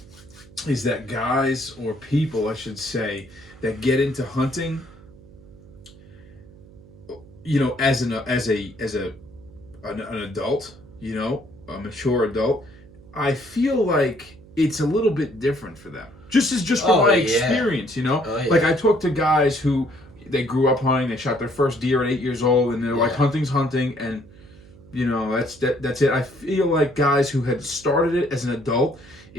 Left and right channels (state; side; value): noise; right; hum, 22 dB below the sound